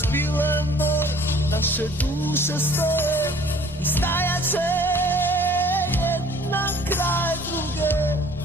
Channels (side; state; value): both; normal; correlation 0.52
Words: bile moj, naše duše stoje i stajat će jedna kraj druge.